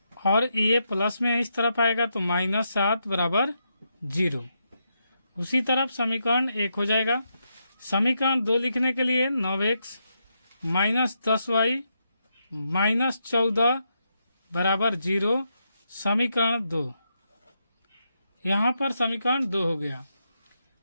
और ये प्लस में इस तरफ आएगा तो -7 बराबर 0। उसी तरफ समीकरण 1 हो जाएगा। समीकरण 2 लिखने के लिए 9x माइनस 10y माइनस 14 बराबर 0, समीकरण 2। यहाँ पर समीकरण 2 हो गया।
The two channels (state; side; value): inverted; both; correlation -0.82